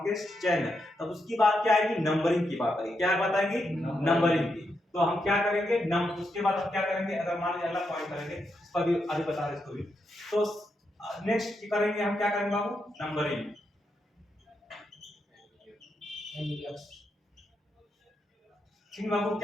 चेन है, तब उसकी बात क्या आएगी, नंबरिंग की बात आएगी, क्या बात आएगी, नंबरिंग की। तो हम क्या करेंगे, उसके बाद हम क्या करेंगे, अगर मान लीजिए अगला पॉइंट करेंगे, इस पर भी आगे बता रहे इसको भी, तो नेक्स्ट करेंगे हम क्या करेंगे बाबू, नंबरिंग, ठीक बाबू,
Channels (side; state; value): both; normal; correlation 0.83